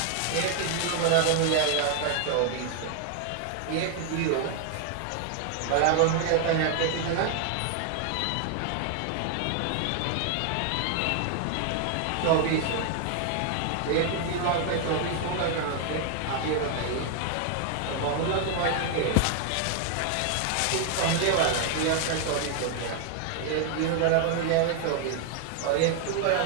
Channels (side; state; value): both; different; correlation 0.00